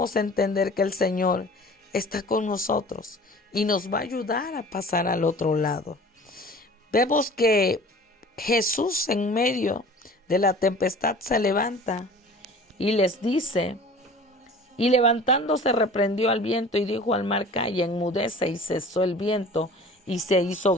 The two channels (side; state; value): both; normal; correlation 0.44